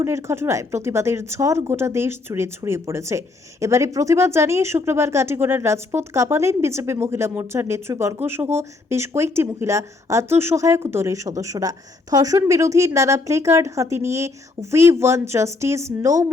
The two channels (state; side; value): quieter; right; 3.6 dB